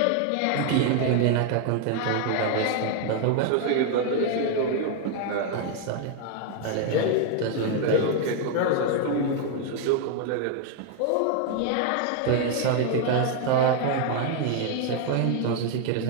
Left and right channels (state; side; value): different; both; correlation 0.00